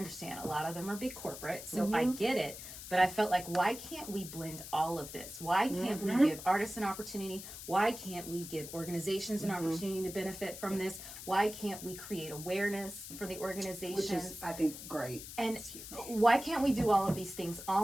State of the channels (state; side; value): noise; left; hiss, 11 dB below the sound